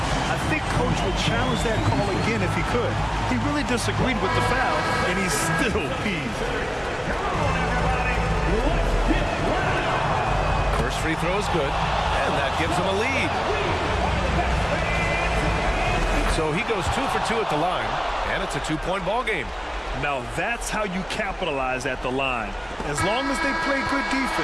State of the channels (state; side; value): identical; both; correlation 1.00